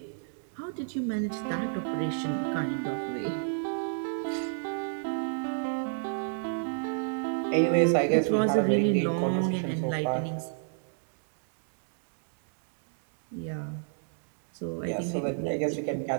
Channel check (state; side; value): silent; left; digital silence